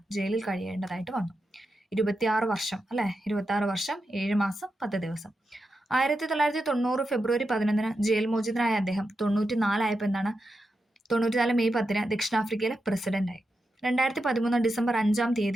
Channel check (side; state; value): both; normal; correlation 0.88